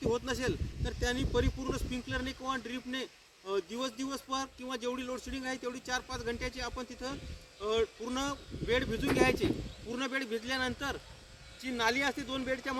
होत नसेल तर त्यांनी परिपूर्ण स्प्रिंकलरने किंवा ड्रीपने दिवस पर किंवा जेवढी लोडशेडिंग आहे तेवढी 4-5 घंट्याची आपण तिथं पूर्ण बेड भिजून घ्यायचे. पूर्ण बेड भिजल्यानंतर जी नाली असते 2 बेडच्या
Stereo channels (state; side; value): identical; both; correlation 1.00